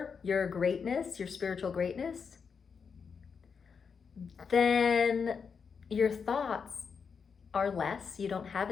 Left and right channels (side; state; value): right; quieter; 6.0 dB